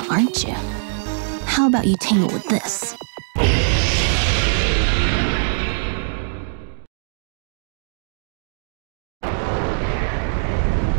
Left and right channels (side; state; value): left; silent; digital silence